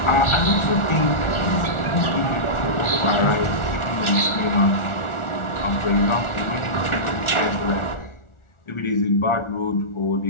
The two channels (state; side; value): late; right; 1.4 ms